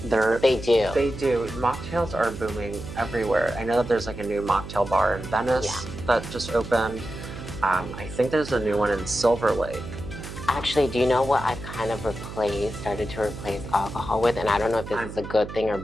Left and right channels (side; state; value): right; noise; hum, 11 dB below the sound